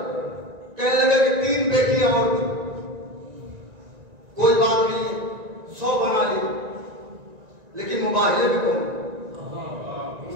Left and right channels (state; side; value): late; left; 1.9 ms